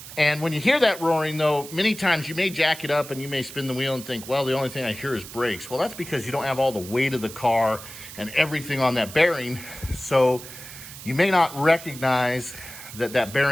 And when you hear that roaring though, many times you may jack it up and you may spin the wheel and think, well, the only thing I hear is brakes. Well, that's because you don't have all the weight of the car and everything on that bearing. So you may not recognize that that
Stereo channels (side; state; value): right; noise; hiss, 14 dB below the sound